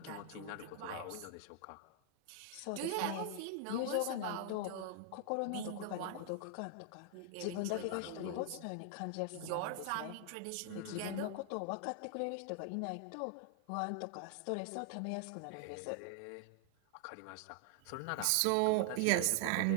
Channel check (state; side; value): different; both; correlation 0.00